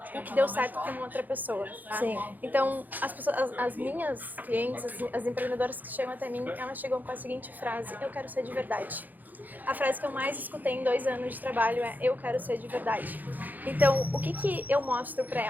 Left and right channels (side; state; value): left; late; 0.084 ms